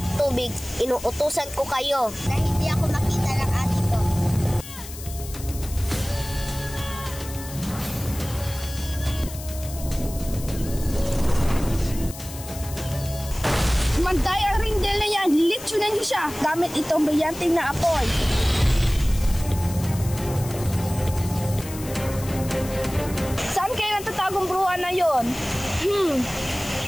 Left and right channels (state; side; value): noise; left; hiss, 13 dB below the sound